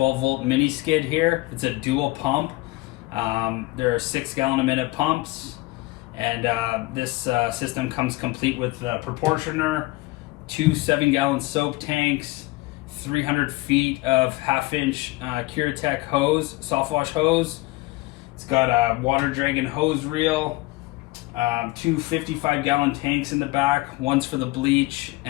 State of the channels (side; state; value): right; quieter; 21.1 dB